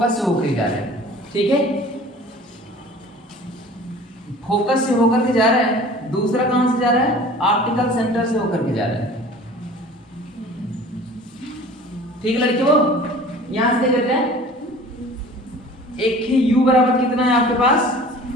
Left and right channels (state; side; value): normal; both; correlation 0.45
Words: से होकर जा रहा है, ठीक है। फोकस से होकर के जा रहा है, दूसरा कहां से जा रहा है, ऑप्टिकल सेंटर से होकर के जा रहा है, ठीक है लड़कियों। यहां से देख हैं एक ही u बराबर कितना है आपके पास